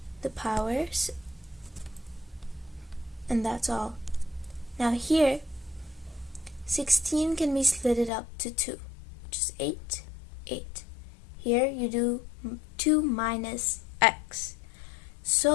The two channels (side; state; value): right; drops out; at 8.1 s